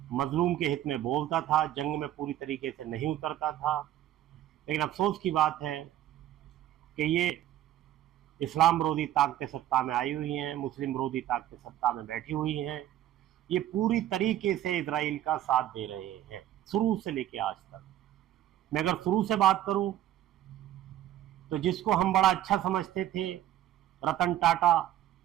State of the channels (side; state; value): left; quieter; 12.7 dB